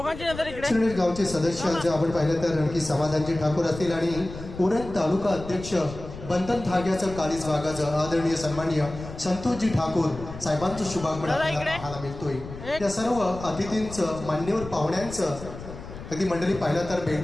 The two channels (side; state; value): left; noise; rumble, 12 dB below the sound